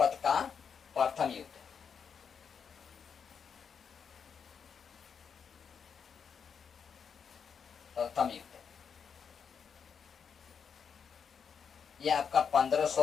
का प्रथम युद्ध। ये आपका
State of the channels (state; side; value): quieter; right; 6.7 dB